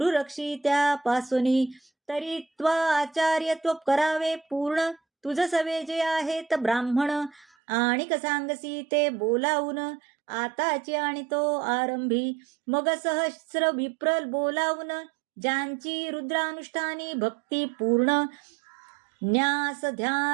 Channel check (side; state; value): left; drops out; at 7.5 s